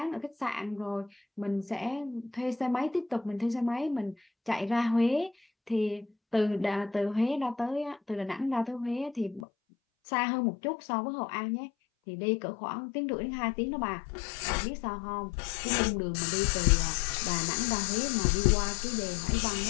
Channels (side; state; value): right; drops out; at 9.4 s